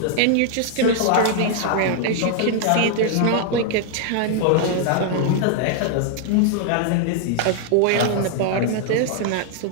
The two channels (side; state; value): both; different; correlation 0.00